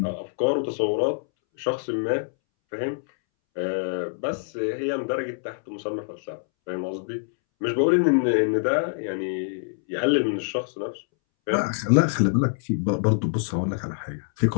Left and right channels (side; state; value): right; silent; 62 dB below the other